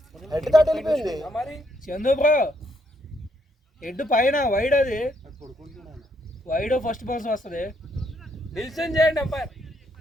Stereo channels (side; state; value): both; normal; correlation 0.74